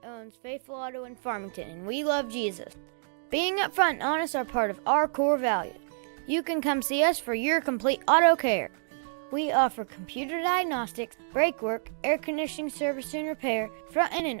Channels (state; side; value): silent; left; digital silence